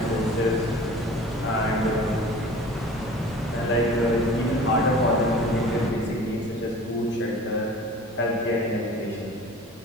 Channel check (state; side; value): normal; both; correlation 0.43